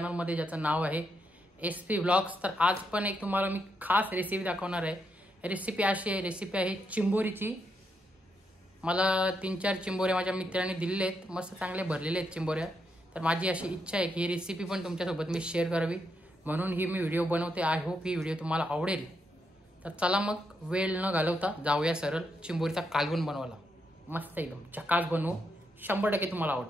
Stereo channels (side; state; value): both; normal; correlation 0.80